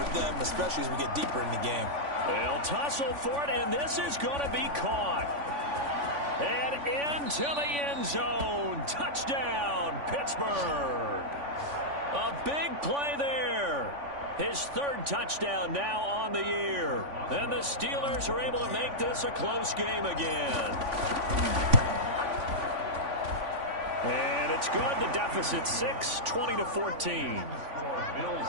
them, especially as we get deeper in the game. They'll tussle for it, and this is going to be caught. And into the end zone. Touchdown, Pittsburgh. A big play there. His 3rd touchdown now on the year. And the Steelers are able to make this a close game again. And it's good. The deficit 6, 20-14.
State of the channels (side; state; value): left; late; 3.5 ms